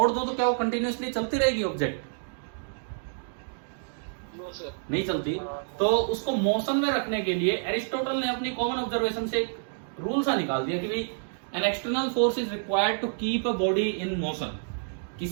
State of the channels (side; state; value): left; silent; digital silence